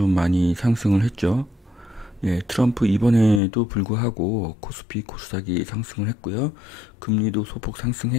많이 상승을 했죠. 예, 트럼프 이번에도 불구하고 코스피, 코스닥이 상승을 했고요. 금리도 소폭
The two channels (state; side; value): drops out; right; at 3.4 s